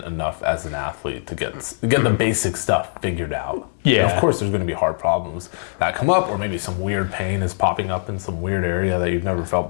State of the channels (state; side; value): silent; right; digital silence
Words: enough as an athlete to get the basic stuff figured out. Yeah. And of course, there's going to be hard problems that come up, or maybe some weird pain is popping up in some weird area that you've never felt